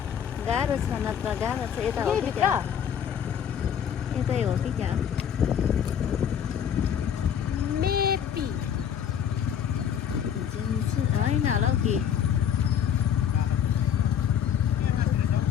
गाह्रो छ नत्र गाह्रो छ यता हो कि त्यहाँ यतै हो कि त्यहाँ मेबी होइन होला हौ कि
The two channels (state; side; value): quieter; right; 8.6 dB